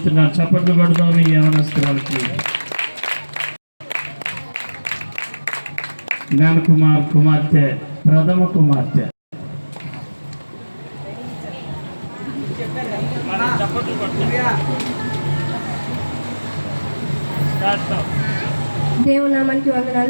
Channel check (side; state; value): both; inverted; correlation -1.00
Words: చప్పట్లు కొడదాం ఈ యవనస్తురాలకి. జ్ఞానకుమార్ కుమార్తె, ప్రథమ కుమార్తె. దేవునామానికి